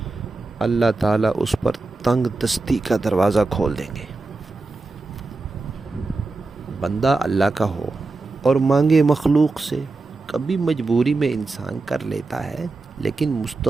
اللہ تعالیٰ اس پر تنگ دستی کا دروازہ کھول دیں گے۔ بندہ اللہ کا ہو اور مانگے مخلوق سے، کبھی مجبوری میں انسان کر لیتا ہے، لیکن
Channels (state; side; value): quieter; left; 3.5 dB